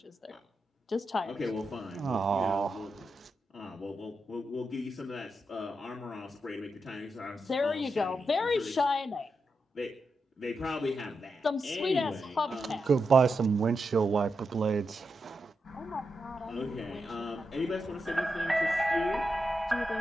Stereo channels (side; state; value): both; normal; correlation 0.86